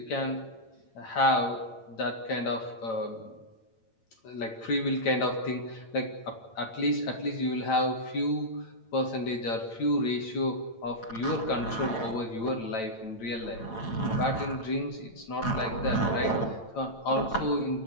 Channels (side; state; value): right; late; 8.9 ms